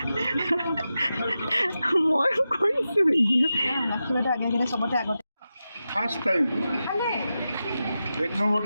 মই কৰিছোঁ ৰাখি বাইদেউ আগে আগে চবতে আগতে ফাৰ্ষ্ট টাইম 1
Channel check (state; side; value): inverted; both; correlation -0.91